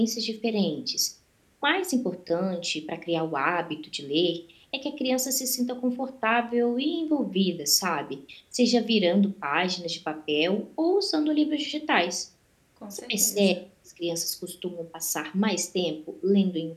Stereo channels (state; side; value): identical; both; correlation 1.00